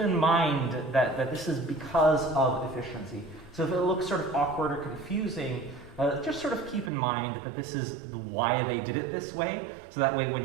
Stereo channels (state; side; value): drops out; left; at 6.9 s